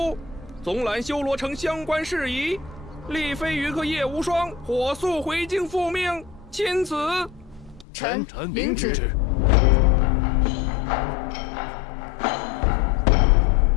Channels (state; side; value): drops out; right; at 7.9 s